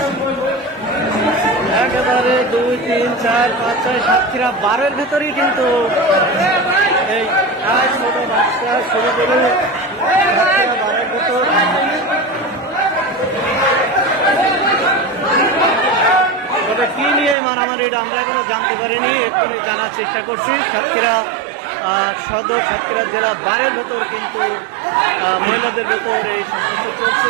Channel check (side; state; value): left; drops out; at 17.4 s